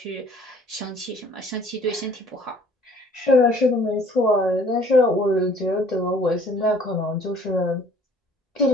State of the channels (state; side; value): normal; both; correlation 0.55